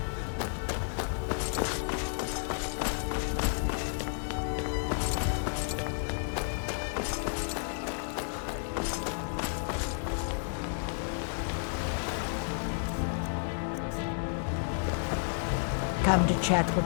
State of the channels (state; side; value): silent; right; digital silence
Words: Come to chat